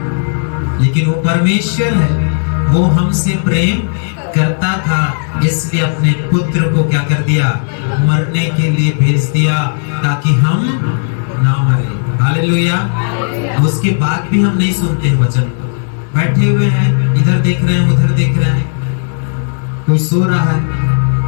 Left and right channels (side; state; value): right; silent; digital silence